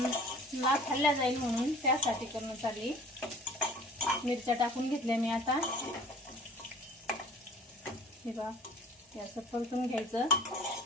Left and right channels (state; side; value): normal; both; correlation 0.47